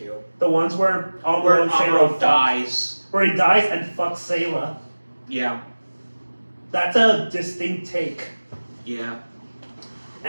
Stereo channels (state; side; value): inverted; both; correlation -1.00